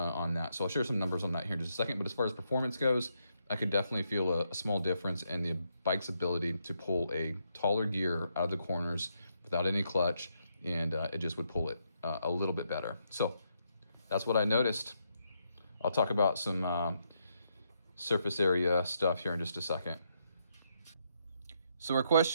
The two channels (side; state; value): both; inverted; correlation -0.78